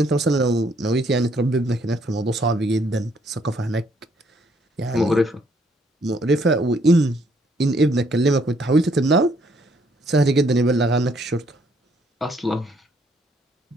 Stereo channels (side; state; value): both; normal; correlation 0.67